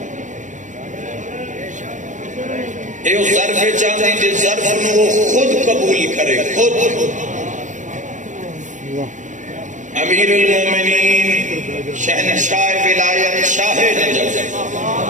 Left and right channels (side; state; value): left; late; 0.36 ms